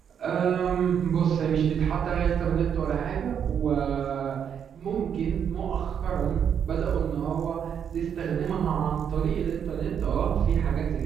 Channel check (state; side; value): quieter; left; 8.1 dB